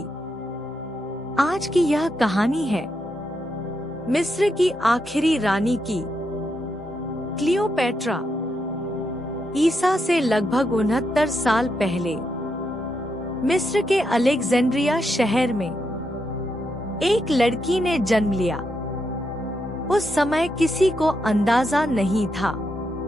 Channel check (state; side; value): normal; both; correlation 0.82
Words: आज की यह कहानी है मिस्र की आखिरी रानी की, क्लियोपेट्रा। ईसा से लगभग 69 साल पहले मिस्र के अलेक्जेंड्रिया शहर में एक लड़की ने जन्म लिया। उस समय किसी को अंदाजा नहीं था